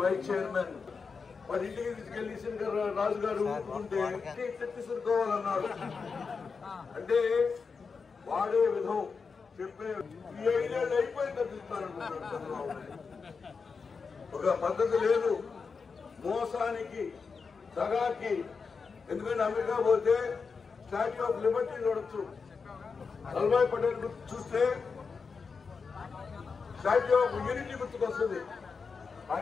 వైస్ చైర్మన్ వారి ఇంటికి తీసుకెళ్లి శంకర్ రాజు గారు ఊరుకుంటే తెచ్చిసుకోవాలన్నాడు. అంటే వాడే విధం చెప్పే ఈ 5 ఏళ్ళు అయిపోయి తప్పిస్తారనుకుంటారు చంద్రబాబు. ఒక పద్ధతి లేదు మోసానికి, దగాకి. ఎందుకంటే అమెరికా పోతే స్టాచ్యూ ఆఫ్ లిబర్టీ చూడొచ్చు, వల్లభాయ్ పటేల్ గుర్తు చూస్తే స్టాచ్యూ ఆఫ్ యూనిటీ గుర్తుకొస్తుంది.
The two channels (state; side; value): quieter; right; 5.1 dB